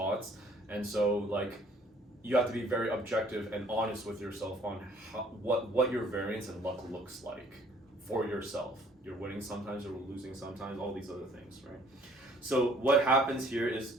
and so like you have to be very objective and honest with yourself on what your variance and luck looks like for yourself. You're winning sometimes, you're losing sometimes, all these other things, right? So what happens here is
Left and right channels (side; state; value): both; normal; correlation 0.58